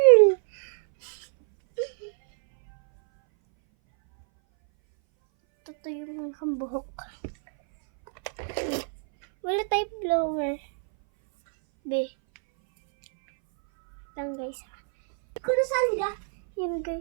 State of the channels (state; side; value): silent; left; 59 dB below the other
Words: Ito yung mga buhok. Wala tayong blower. Be. Lang guys. Kung nasaan ka? Yan